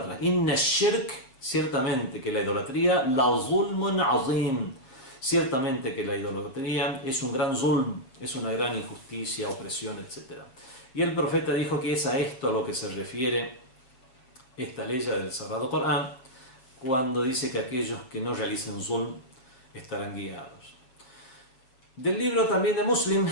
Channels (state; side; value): late; right; 7.5 ms